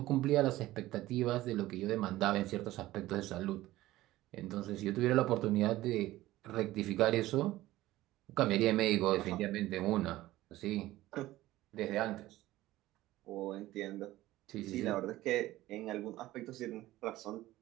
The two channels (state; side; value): quieter; left; 16.4 dB